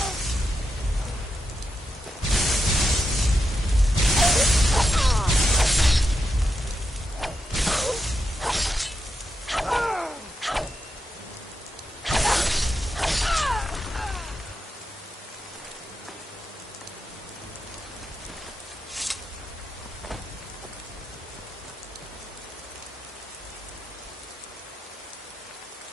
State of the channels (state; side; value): normal; both; correlation 0.85